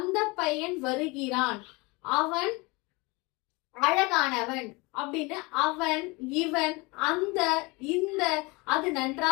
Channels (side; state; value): right; quieter; 25.7 dB